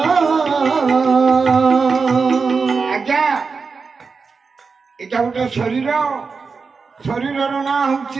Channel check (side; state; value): left; quieter; 4.9 dB